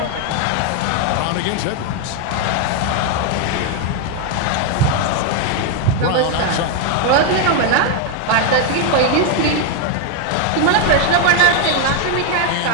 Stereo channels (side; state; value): both; different; correlation 0.01